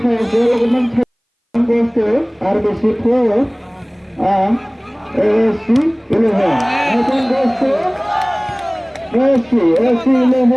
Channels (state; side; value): identical; both; correlation 1.00